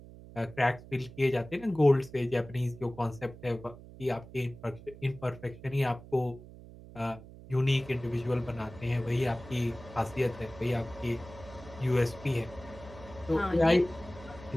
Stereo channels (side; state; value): right; noise; hum, 17 dB below the sound